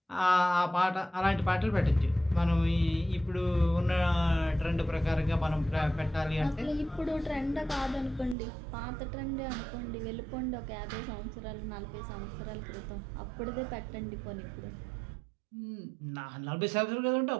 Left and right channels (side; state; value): left; drops out; at 8.3 s